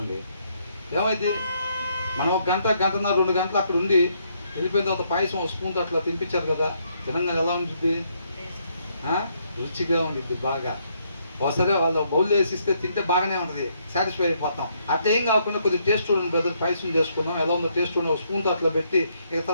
ఏమైంది? మనం 1 గంట, గంటన్నర, 2 గంటలు అక్కడ ఉండి వెళ్ళిపోయిన తర్వాత పాయసం ఒక స్పూన్తో అట్లా తినిపించారు కదా, తినంగా ఎలా ఉంటుంది? రుచిగా ఉండిద్ది బాగా. ఒకసారి వాళ్ళు బౌల్ వేసిస్తే తింటే బాగానే ఉంటుంది, సాటిస్ఫై అయిపోతాం. అట్లా ఏం కాకుండా కొద్దిగా టేస్ట్ చూడండి బ్రదర్, పాయసం చేసుకున్నాం, ఎలా ఉందో టేస్ట్ చూడండి, ఒక స్పూన్తో అట్లా పెట్టి ఇక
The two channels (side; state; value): both; inverted; correlation -0.73